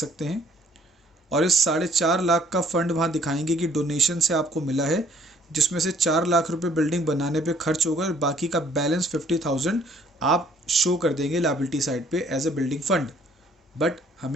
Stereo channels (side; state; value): both; normal; correlation 0.61